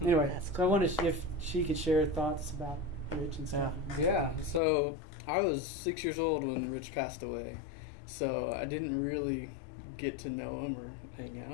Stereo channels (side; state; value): right; drops out; at 4.6 s